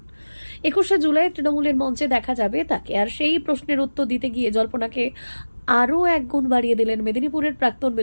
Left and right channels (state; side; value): inverted; both; correlation -1.00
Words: 21শে জুলাই তৃণমূলের মঞ্চে দেখা যাবে তাকে। আর সেই প্রশ্নের উত্তর দিতে গিয়ে জল্পনাকে আরও এক গুণ বাড়িয়ে দিলেন মেদিনীপুরের প্রাক্তন